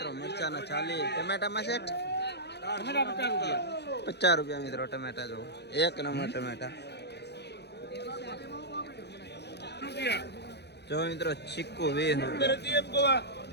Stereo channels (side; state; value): right; late; 0.49 ms